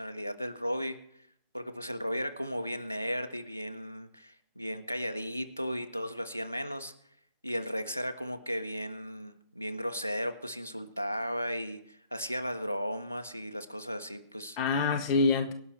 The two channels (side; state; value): both; inverted; correlation -0.73